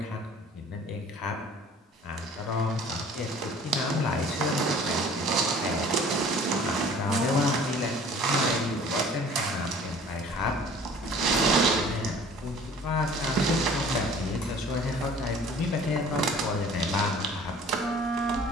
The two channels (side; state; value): both; normal; correlation 0.49